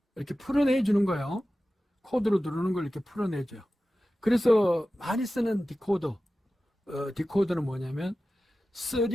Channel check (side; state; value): both; normal; correlation 0.95